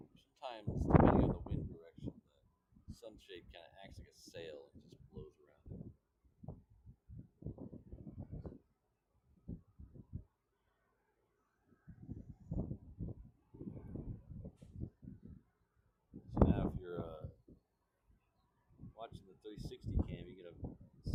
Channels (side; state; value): both; identical; correlation 1.00